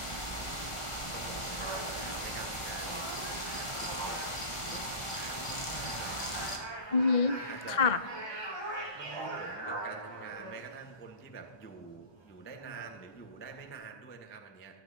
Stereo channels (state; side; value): late; right; 1.4 ms